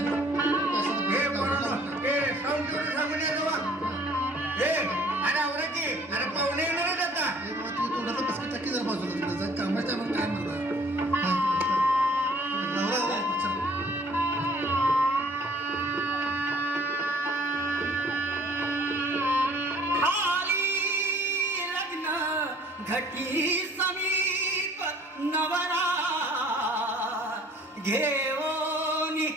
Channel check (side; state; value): both; normal; correlation 0.55